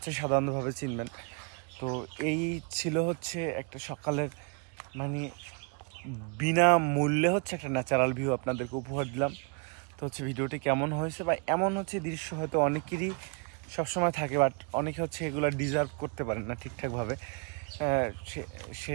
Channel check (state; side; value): quieter; left; 34.4 dB